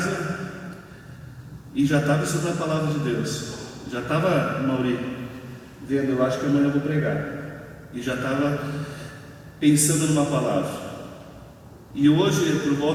e já estava estudando a palavra de Deus. Já estava, Mauri, vendo, eu acho que amanhã eu vou pregar. E já estava pensando numa palavra. E hoje, por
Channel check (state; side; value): identical; both; correlation 1.00